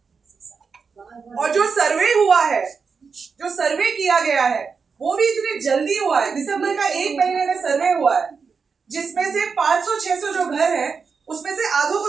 और जो सर्वे हुआ है, जो सर्वे किया गया है, वो भी इतनी जल्दी हुआ है। दिसंबर का 1 महीने में सर्वे हुआ है, जिसमें से 500-600 जो घर है उसमें से आधों को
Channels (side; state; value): left; quieter; 5.4 dB